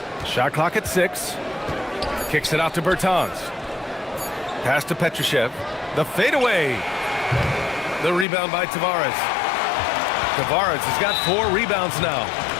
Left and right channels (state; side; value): drops out; right; at 8.2 s